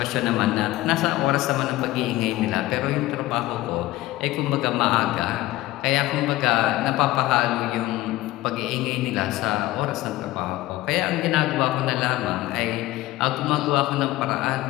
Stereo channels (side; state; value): right; quieter; 17.1 dB